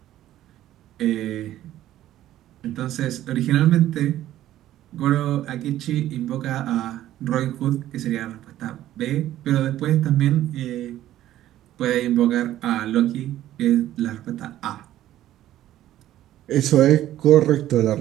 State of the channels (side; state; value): left; quieter; 13.3 dB